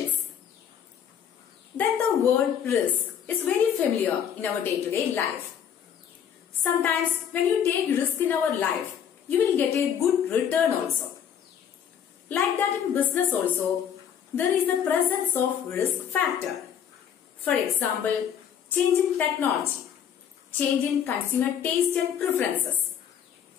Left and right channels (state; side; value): quieter; right; 8.6 dB